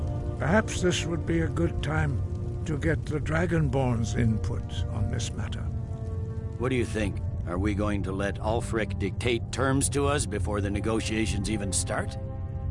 Perhaps this would be a good time to get the Dragonborn's input on this matter. What do you think? Are we going to let Ulfric dictate terms to us before the negotiations even start?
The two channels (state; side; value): identical; both; correlation 1.00